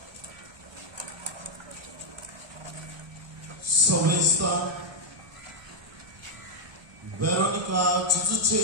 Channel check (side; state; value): left; late; 1.2 ms